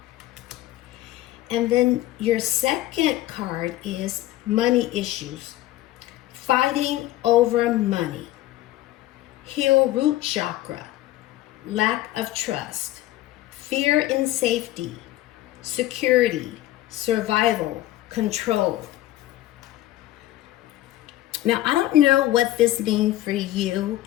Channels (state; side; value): quieter; right; 15.3 dB